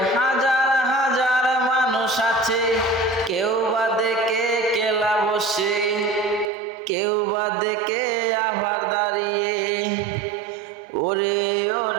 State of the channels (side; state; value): left; drops out; at 6.5 s